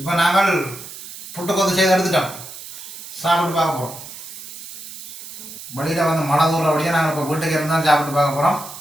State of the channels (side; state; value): right; noise; hiss, 13 dB below the sound